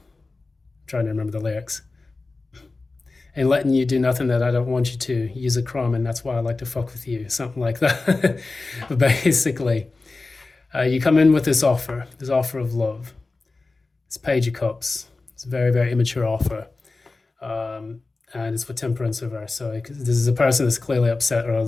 trying to remember the lyrics. Ain't letting you do nothing that I don't want you to. Use a crumb, and that's why I like to fuck with you. Something like that. But basically, you come in with this offer of love. It's Page of Cups. It's a very, very immature offer. And it's for Temperance reverse. So this is a person that's clearly upset or a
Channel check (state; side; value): quieter; right; 3.5 dB